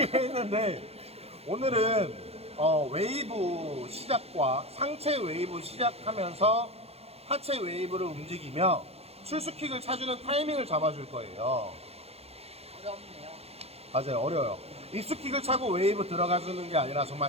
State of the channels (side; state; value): left; late; 0.29 ms